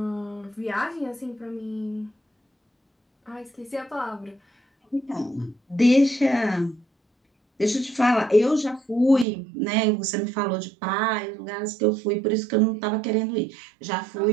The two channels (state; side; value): drops out; left; at 9.2 s